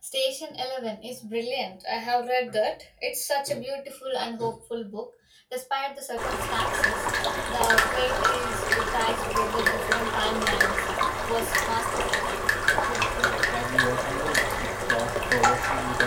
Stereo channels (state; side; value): identical; both; correlation 1.00